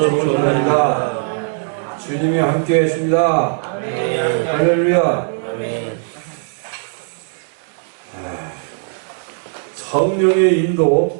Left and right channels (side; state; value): left; silent; 58 dB below the other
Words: 부릅니다. 주님이 함께 계십니다. 할렐루야. 성령의